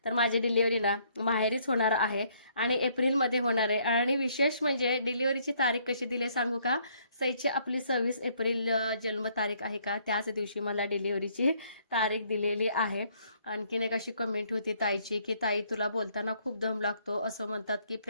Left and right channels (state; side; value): inverted; both; correlation -0.67